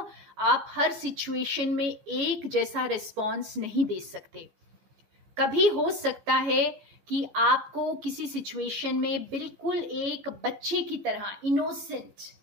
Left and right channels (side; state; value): left; late; 14 ms